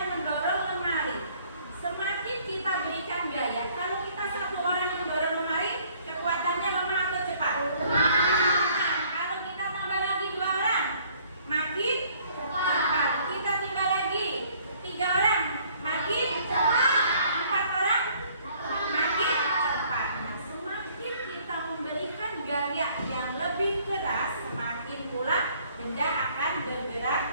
mendorong lemari. Semakin kita berikan gaya, kalau kita satu orang mendorong lemari, kekuatannya lemah atau cepat? Nah, kalau kita tambah lagi 2 orang, makin cepat. Kita tambah lagi 3 orang, makin cepat. 4 orang, makin cepat. Nah, semakin kita memberikan gaya yang lebih keras, semakin pula benda akan bergerak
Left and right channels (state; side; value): inverted; both; correlation -0.60